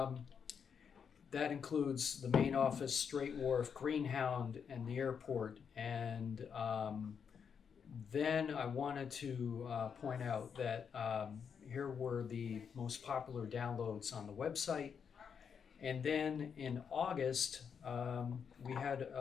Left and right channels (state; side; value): quieter; right; 6.9 dB